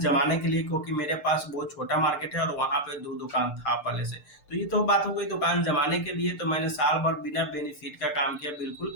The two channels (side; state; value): right; late; 6.7 ms